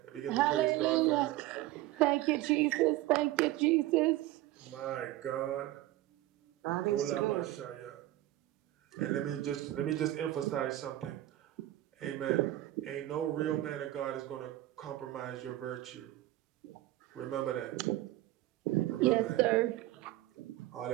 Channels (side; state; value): left; quieter; 15.7 dB